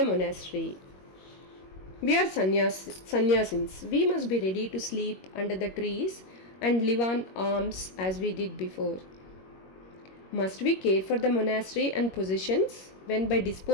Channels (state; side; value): late; right; 21 ms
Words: monastery. We are sannyasins. We must be ready to sleep under the trees and live on alms as we did before. Must we care for the monastery and possessions when by